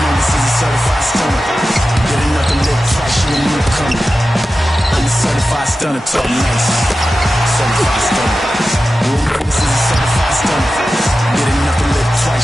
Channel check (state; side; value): normal; both; correlation 0.93